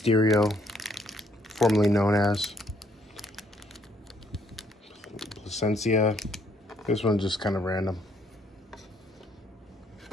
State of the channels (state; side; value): normal; both; correlation 0.69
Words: formerly known as Placencia. This one's just kind of random.